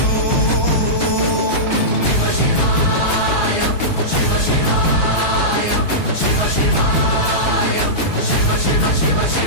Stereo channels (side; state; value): right; late; 5.6 ms